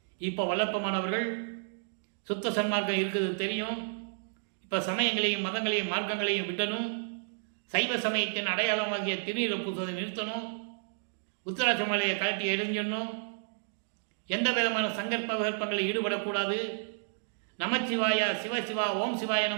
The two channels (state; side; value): silent; left; digital silence